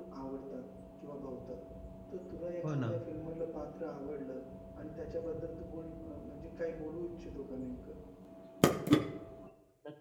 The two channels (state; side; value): identical; both; correlation 1.00